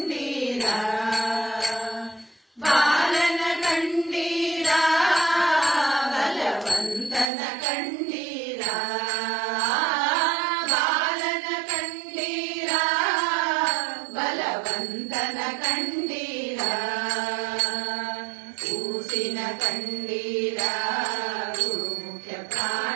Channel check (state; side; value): drops out; left; at 7.3 s